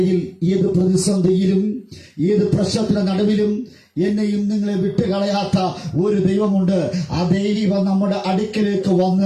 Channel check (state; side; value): identical; both; correlation 1.00